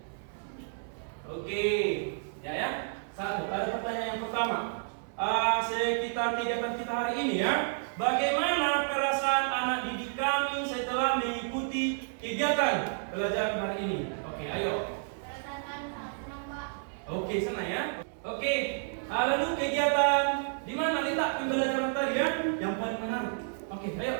Oke, ya. Satu, ada pertanyaan yang pertama. Sekitar kegiatan kita hari ini ya. Bagaimana perasaan anak didik kami setelah mengikuti kegiatan pelajaran hari ini? Oke, ayo. Perasaan kami sangat senang, Pak. Oke, senang ya. Oke, lalu kegiatan di mana letak pembelajaran tadi ya? Yang paling menarik. Oke, ayo.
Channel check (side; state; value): left; silent; 57 dB below the other